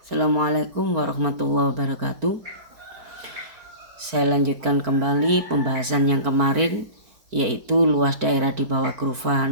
Assalamualaikum warahmatullahi wabarakatuh. Saya lanjutkan kembali pembahasan yang kemarin, yaitu luas daerah di bawah kurva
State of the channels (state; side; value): late; left; 4.5 ms